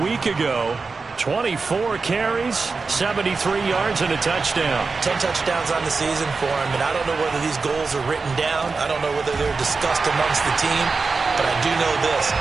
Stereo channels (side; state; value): left; quieter; 4.3 dB